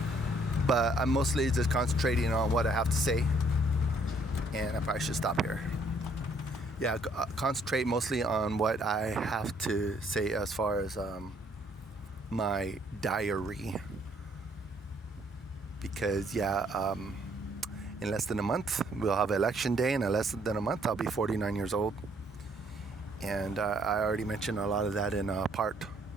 But I'm mostly just concentrating on what I have to say. And I probably should stop here. Concentrate mostly on what I have to say as far as my diary, because in less than a month we'll have election day, and in less than a month I'll be 49 years old, and I already mentioned a lot of that in part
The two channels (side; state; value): both; normal; correlation 0.65